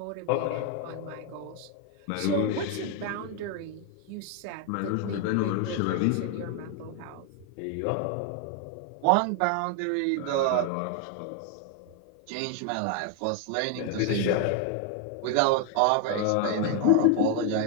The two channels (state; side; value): different; both; correlation 0.01